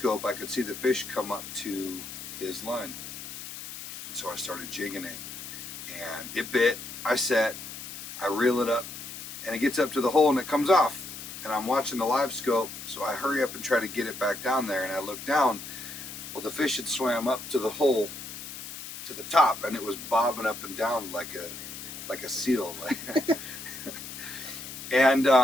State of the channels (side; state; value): left; noise; hiss, 10 dB below the sound